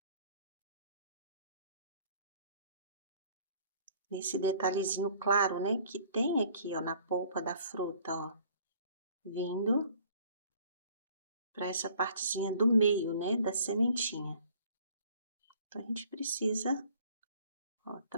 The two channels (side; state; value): both; inverted; correlation -0.55